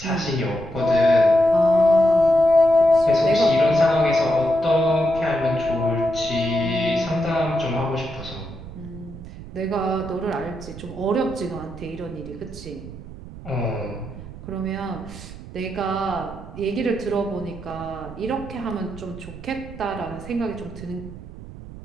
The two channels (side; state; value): right; noise; rumble, 14 dB below the sound